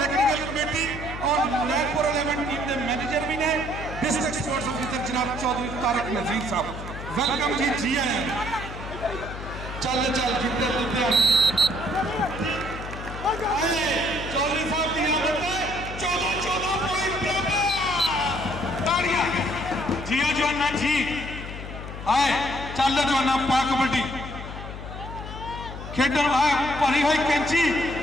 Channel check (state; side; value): noise; left; hum, 10 dB below the sound